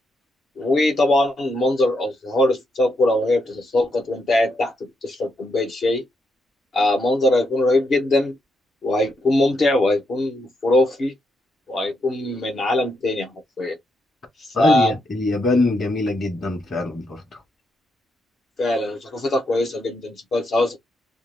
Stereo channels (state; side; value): normal; both; correlation 0.80